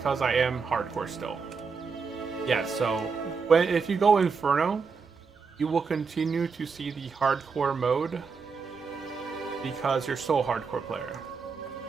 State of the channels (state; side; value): quieter; left; 5.2 dB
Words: I am hardcore still. Yeah, so if you go Inferno, you will continue to see the hardcore mode because you're still a hardcore player.